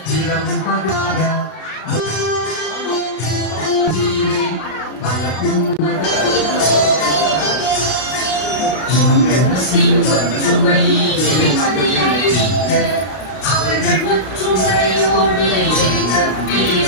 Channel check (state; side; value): late; right; 32 ms